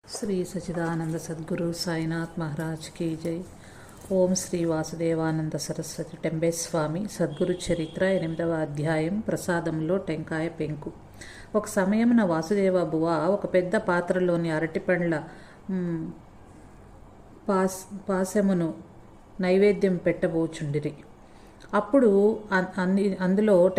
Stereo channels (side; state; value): both; identical; correlation 1.00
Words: Shri Sachidananda Sadhguru Sainath Maharaj key జై. ఓం శ్రీ వాసుదేవానంద సరస్వతి టెంబేస్వామి సద్గురు చరిత్ర 8వ అధ్యాయం. ప్రసాదంలో టెంకాయ పెంకు. ఒక సమయమున వాసుదేవ బువ ఒక పెద్ద పాత్రలోని అరటిపండ్ల పాశమును నైవేద్యం పెట్టబోచుండిరి. అప్పుడు అందులో